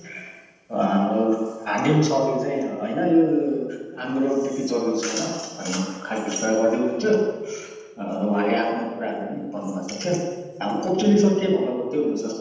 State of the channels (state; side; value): identical; both; correlation 1.00